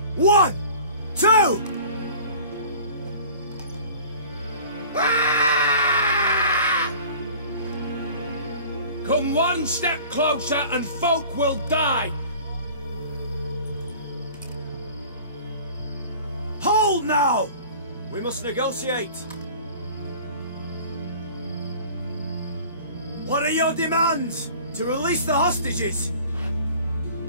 1, 2! Come one step closer and folk will die! Hold now! We must negotiate. What are your demands? To release the hostages?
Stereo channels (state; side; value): inverted; both; correlation -0.44